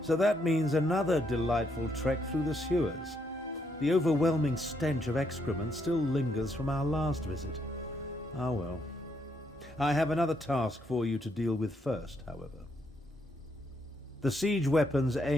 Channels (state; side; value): normal; both; correlation 0.76